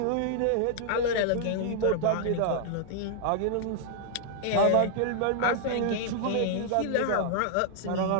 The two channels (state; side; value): different; both; correlation -0.01